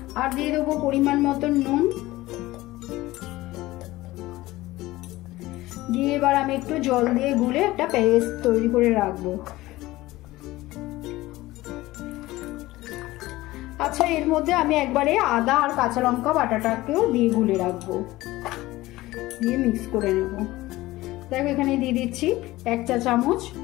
আর দিয়ে দেবো পরিমাণ মতন নুন, দিয়ে এবার আমি একটু জল দিয়ে গুলে একটা পেস্ট তৈরি করে রাখবো। আচ্ছা, এর মধ্যে আমি একবারে আদা আর কাঁচা লঙ্কা বাটাটাকেও দিয়ে গুলে রাখবো, দিয়ে মিক্স করে নেব। দেখো, এখানে দিয়ে দিচ্ছি 1 চা চামচ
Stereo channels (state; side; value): quieter; right; 18.1 dB